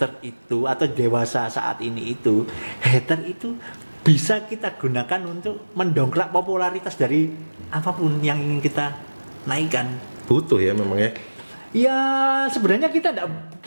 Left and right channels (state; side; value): inverted; both; correlation -1.00